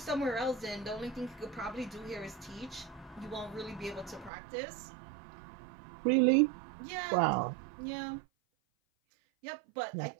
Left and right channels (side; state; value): left; drops out; at 4.3 s